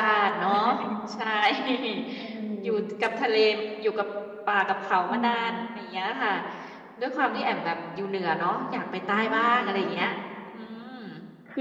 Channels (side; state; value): both; identical; correlation 1.00